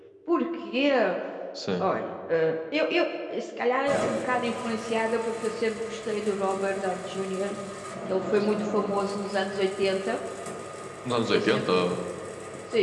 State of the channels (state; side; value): identical; both; correlation 1.00